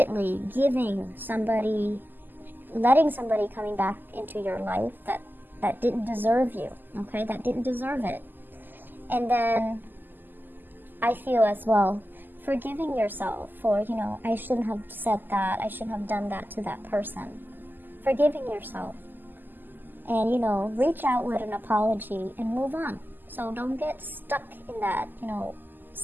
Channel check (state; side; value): late; left; 0.090 ms